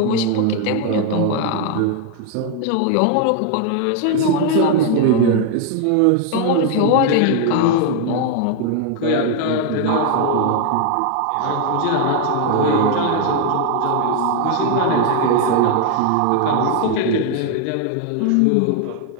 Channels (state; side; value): different; both; correlation 0.00